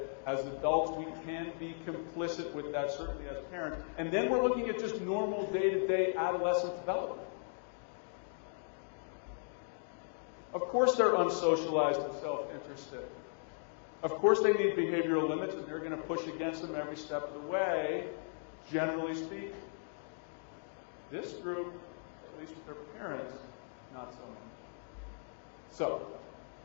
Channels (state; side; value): silent; right; digital silence